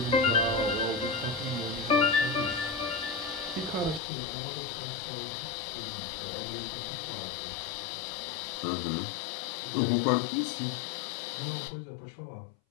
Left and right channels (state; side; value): drops out; right; at 4.0 s